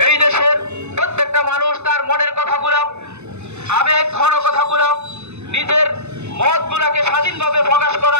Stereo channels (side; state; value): left; late; 0.81 ms